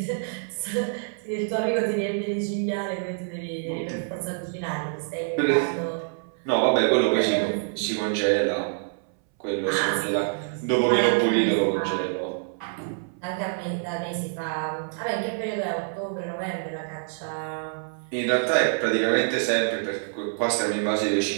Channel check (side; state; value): left; silent; 61 dB below the other